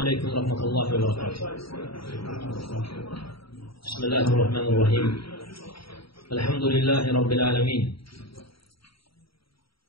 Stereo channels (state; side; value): late; right; 0.75 ms